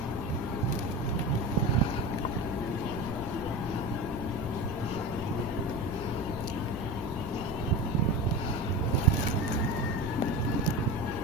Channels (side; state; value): both; normal; correlation 0.27